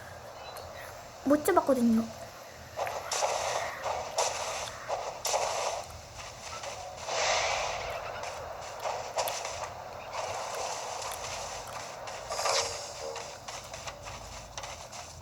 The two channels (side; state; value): both; identical; correlation 1.00